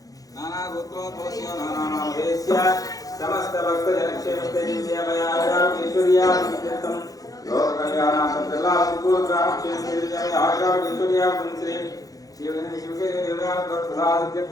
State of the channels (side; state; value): right; late; 0.17 ms